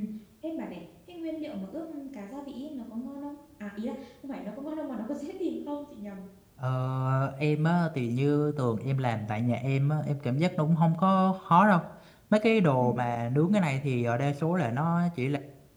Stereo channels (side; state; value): both; identical; correlation 1.00